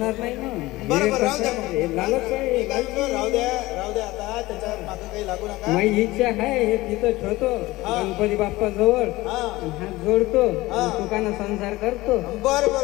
नाही ना. बरोबर, राहू द्या. राहू द्या आता, त्याच्या मागे काही लागू नका. माझी इच्छा आहे हे तिथं ठेवतो, गणपती बाप्पा जवळ हात जोडतो, सुखानं संसार करतो.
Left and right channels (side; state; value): right; quieter; 19.2 dB